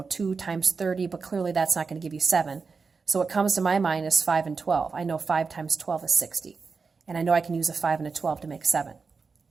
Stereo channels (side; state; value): left; quieter; 4.8 dB